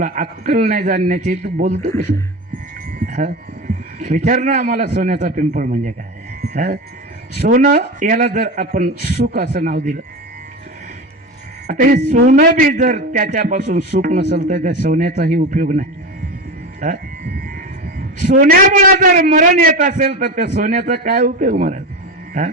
अक्कल नाही जाणण्याची, तू बोलतो कसं? विचार ना आम्हाला सोन्याचा पिंपळ म्हणजे काय. सोनं याला जर आपण सुख असं नाव दिलं, आता हे सोनं बी जर त्याच्यापासून सुख नसेल तर त्या सोन्याचाही उपयोग नाही. सोन्यामुळे जर मरण येत असेल तर त्या सोन्याचा काय उपयोग महाराज?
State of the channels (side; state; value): both; normal; correlation 0.23